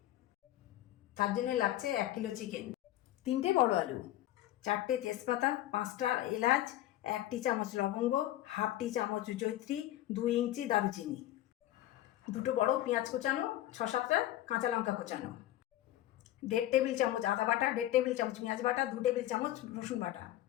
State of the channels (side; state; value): right; quieter; 14.2 dB